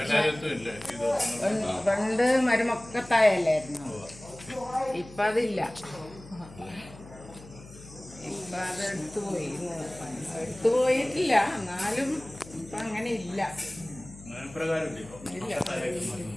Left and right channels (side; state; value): left; noise; hum, 18 dB below the sound